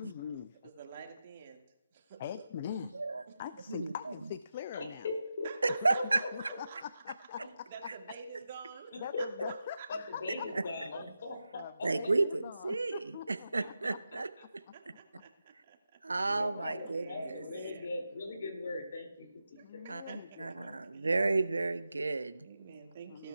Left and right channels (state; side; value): inverted; both; correlation -0.89